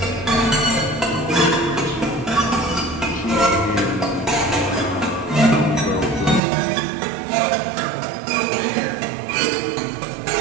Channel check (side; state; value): left; drops out; at 6.4 s